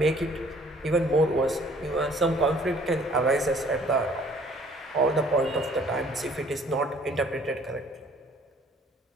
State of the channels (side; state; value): both; normal; correlation 0.57